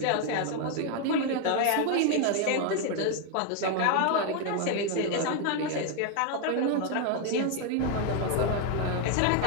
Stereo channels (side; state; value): both; different; correlation 0.01